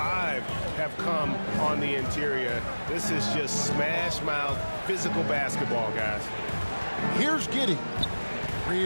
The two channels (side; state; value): both; inverted; correlation -1.00